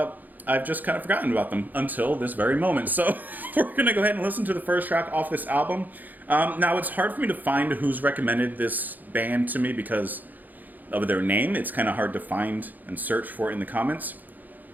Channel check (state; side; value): late; left; 0.084 ms